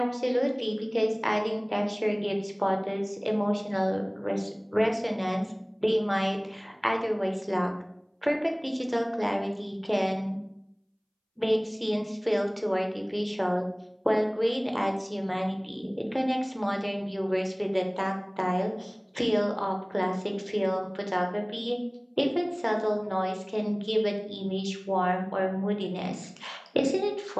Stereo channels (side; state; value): both; identical; correlation 1.00